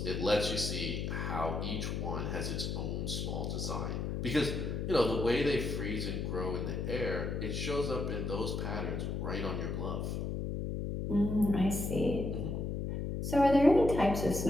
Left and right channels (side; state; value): left; noise; hum, 2 dB below the sound